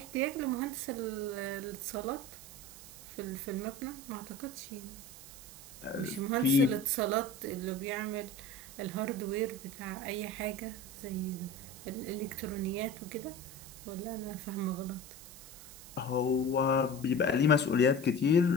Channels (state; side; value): noise; right; hiss, 16 dB below the sound